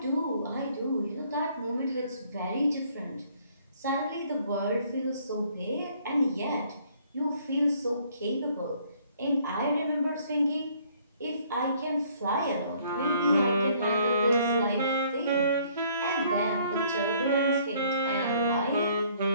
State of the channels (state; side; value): inverted; both; correlation -0.62